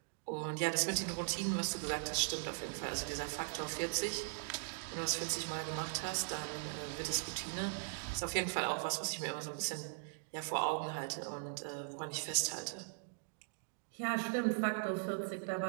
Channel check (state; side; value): silent; left; digital silence